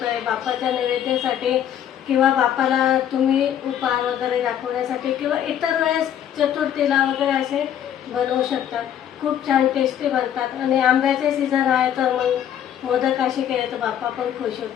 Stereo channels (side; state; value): right; quieter; 10.0 dB